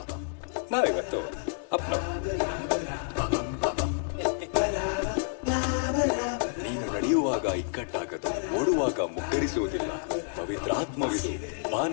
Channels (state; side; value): silent; right; digital silence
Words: ನಾವಿವತ್ತು ಅಪ್ಪನವರು. ನೀನು ನಡೆಯುವಾಗ ಈ ಇಕ್ಕಟ್ಟಾಗದು, ಓಡುವಾಗ ಮುಗ್ಗರಿಸುವುದಿಲ್ಲ. ಪವಿತ್ರಾತ್ಮವಿದು,